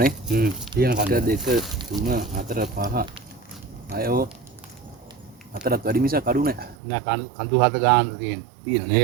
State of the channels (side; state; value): left; drops out; at 6.8 s